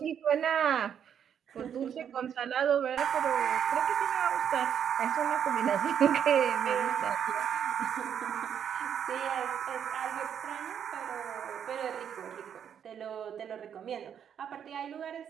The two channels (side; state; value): left; quieter; 8.6 dB